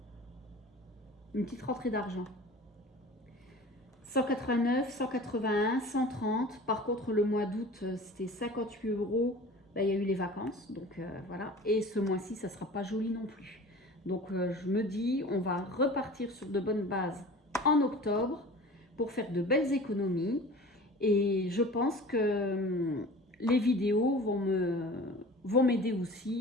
une petite rentrée d'argent. 189, 181, 130. Par contre, le mois d'août, c'était 58 euros. Là, il y a eu les vacances, donc voilà. Et ce mois-ci, ça ne sera pas joli non plus. Donc, je me dis, on va repartir sur de bonnes bases en octobre pour faire de belles économies. Et je pense que les vidéos vont m'aider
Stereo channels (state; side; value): normal; both; correlation 0.40